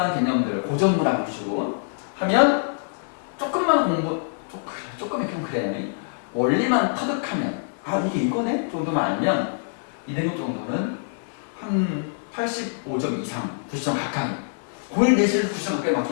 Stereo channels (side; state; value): right; silent; 61 dB below the other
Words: 개념들, 고전 문학 위주로 하면 조금만 조금 좀 그래. 원리만 터득하면 이게 이거네? 정도만 알면 2등급 정도는 한 85점 이상, 90점 가까이. 고1 내신에서 90점 가까이